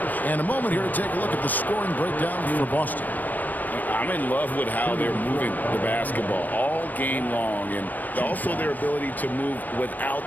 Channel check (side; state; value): right; late; 0.085 ms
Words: And a moment here to take a look at the scoring breakdown for Boston. I'm in love with how they're moving the basketball all game long, and also their ability to move without